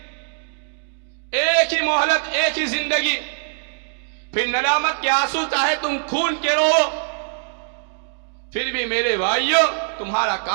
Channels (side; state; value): left; silent; digital silence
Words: ایک ہی مہلت، ایک ہی زندگی. پھر ندامت کے آنسو چاہے تم خون کے رو، پھر بھی میرے بھائیو تمہارا